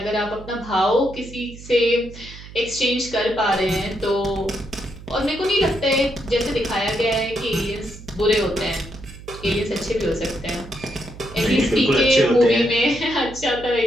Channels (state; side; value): noise; right; hum, 16 dB below the sound